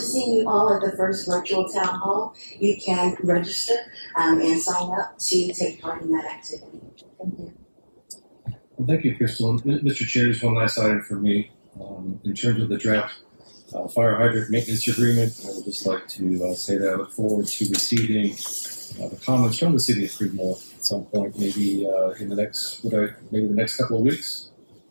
you all at the first virtual town hall. You can register and sign up to take part in that activity. Thank you. Well, thank you, Crystal. Mr. Chair, just one last item for me. In terms of the draft fire hydrant maintenance agreement, I would just like to say that I look forward to receiving the comments from the city of Creedmoor at some point, maybe in the next, maybe the next couple of weeks.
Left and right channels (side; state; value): both; inverted; correlation -1.00